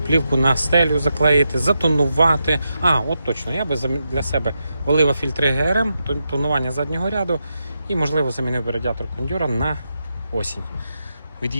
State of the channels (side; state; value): both; inverted; correlation -0.86